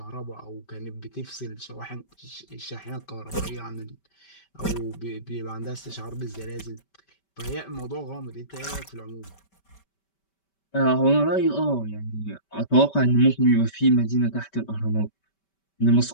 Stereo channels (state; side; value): late; right; 5.2 ms